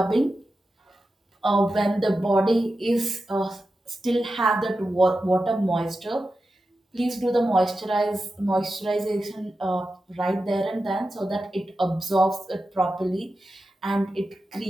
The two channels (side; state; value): both; normal; correlation 0.91